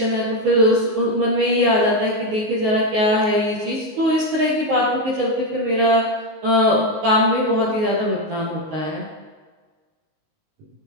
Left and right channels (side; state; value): left; late; 19 ms